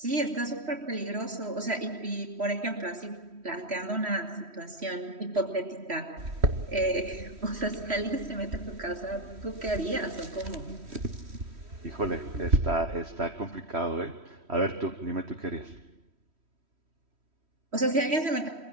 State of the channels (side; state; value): left; late; 3.1 ms